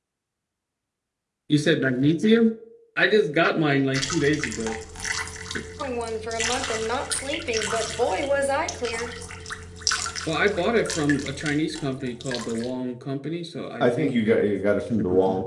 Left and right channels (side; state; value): both; identical; correlation 1.00